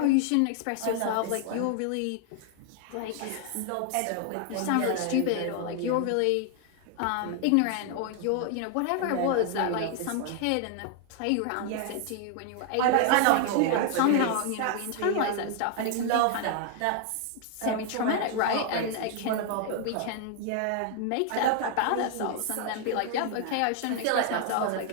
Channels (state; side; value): different; both; correlation 0.00